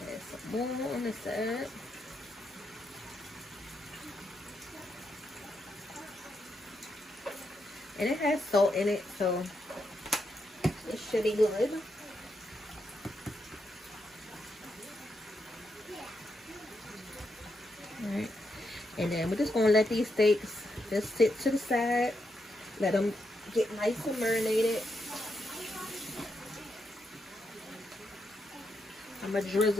Add some more on this side. And it has salt in it, so it should be good. Alright, and then we're just going to let these steaks just sit to the side. Let them get nice and marinated. I'm going to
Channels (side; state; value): both; normal; correlation 0.82